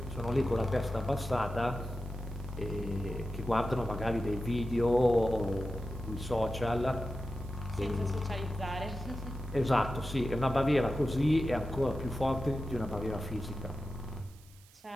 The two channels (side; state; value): right; noise; hiss, 26 dB below the sound